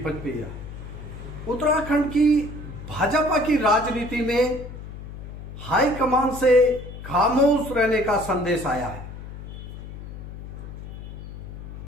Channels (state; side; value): noise; left; hum, 11 dB below the sound